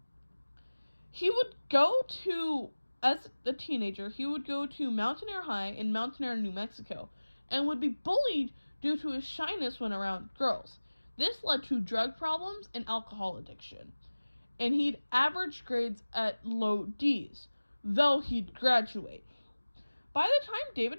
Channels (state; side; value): inverted; both; correlation -1.00